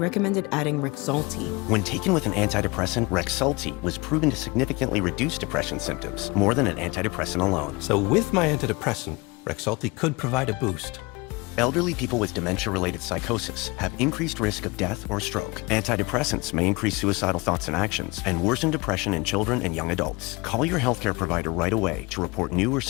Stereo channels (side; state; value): right; quieter; 24.9 dB